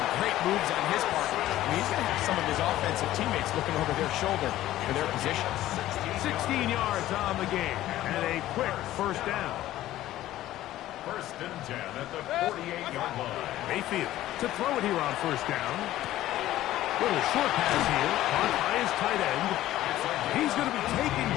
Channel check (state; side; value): quieter; right; 14.4 dB